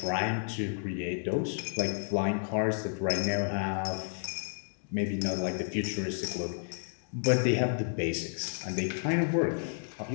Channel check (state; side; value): silent; right; 57 dB below the other